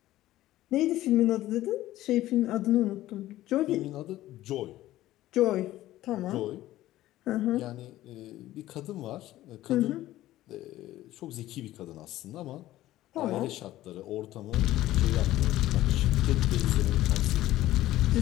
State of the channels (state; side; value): quieter; right; 15.1 dB